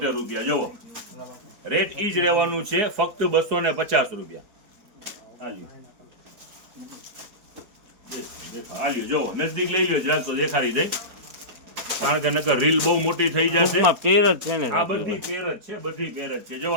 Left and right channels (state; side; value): late; left; 4.3 ms